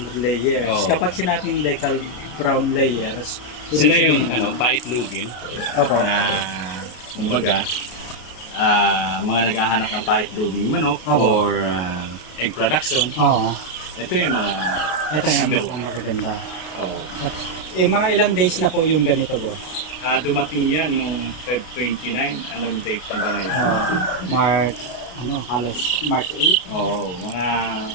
layers. Oo. Kapag sinabing decal brown layers, Sila ibig yung sabihin- paitlugin Opo. na kumbaga mga naghahanap ng paitluging manok Opo. or egg production. Oo. Ito yung mga Ito yung number mga one. magaganda. Oh. Mga ilang days na po yung ganito boss? Dumating yan noong Feb 29. Anong date na ba ngayon? March, halos March 8. Oo, mga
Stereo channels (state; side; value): late; right; 33 ms